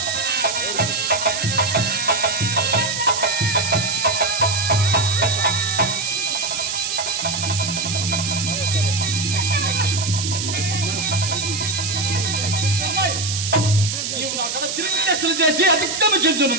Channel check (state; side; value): noise; right; hiss, 3 dB below the sound